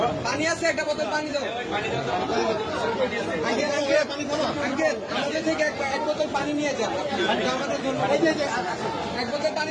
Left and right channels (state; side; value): identical; both; correlation 1.00